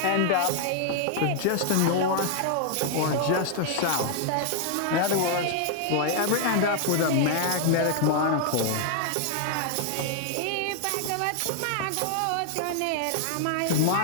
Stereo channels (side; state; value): both; different; correlation 0.00